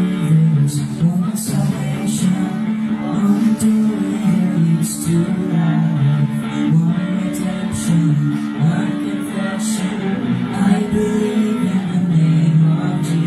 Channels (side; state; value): both; identical; correlation 1.00